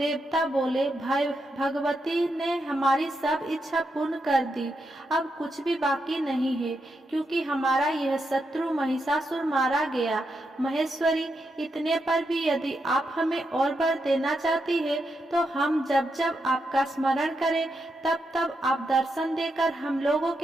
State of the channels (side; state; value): both; normal; correlation 0.84